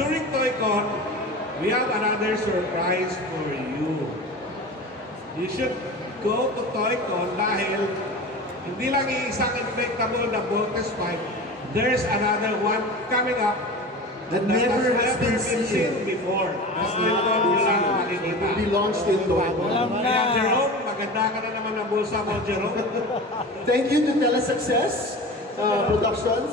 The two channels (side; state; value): both; normal; correlation 0.32